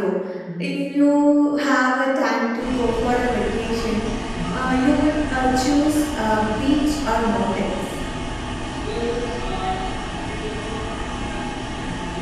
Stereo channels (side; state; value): both; identical; correlation 1.00